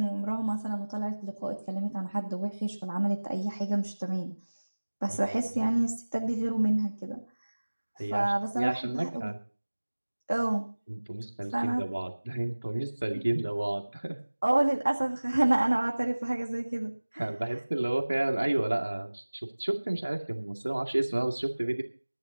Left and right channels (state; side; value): inverted; both; correlation -1.00